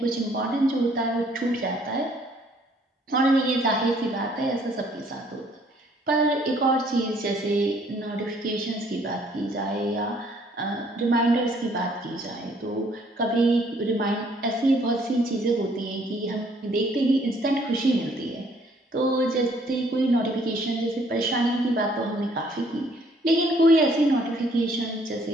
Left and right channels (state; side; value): normal; both; correlation 0.63